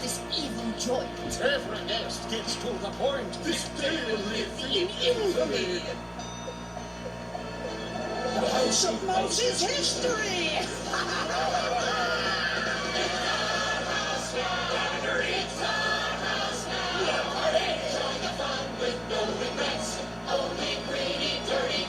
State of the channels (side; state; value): both; identical; correlation 1.00